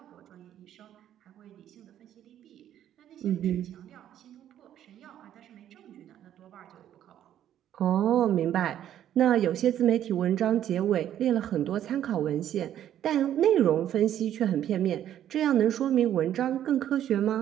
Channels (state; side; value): quieter; left; 11.0 dB